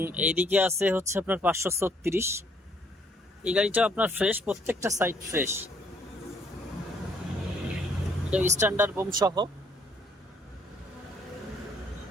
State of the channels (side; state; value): both; normal; correlation 0.66